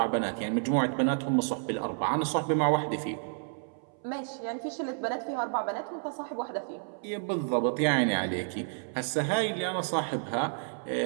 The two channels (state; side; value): silent; left; 58 dB below the other